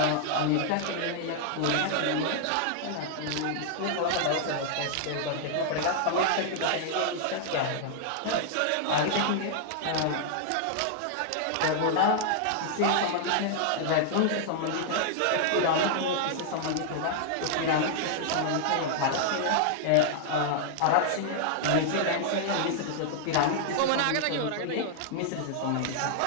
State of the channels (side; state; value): both; different; correlation -0.01